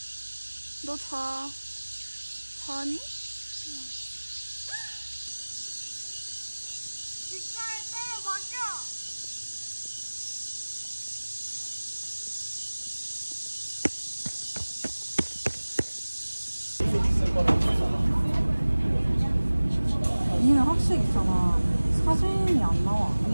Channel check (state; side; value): inverted; both; correlation -1.00